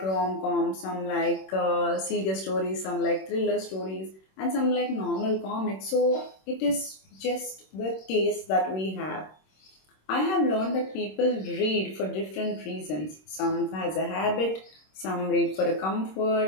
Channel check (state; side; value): late; right; 26 ms